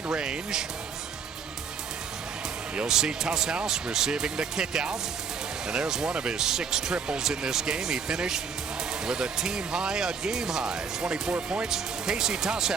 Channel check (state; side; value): quieter; left; 6.0 dB